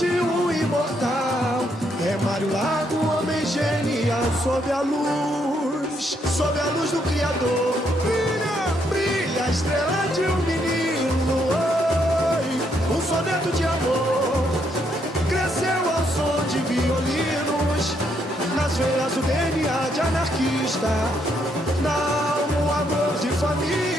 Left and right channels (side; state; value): both; normal; correlation 0.74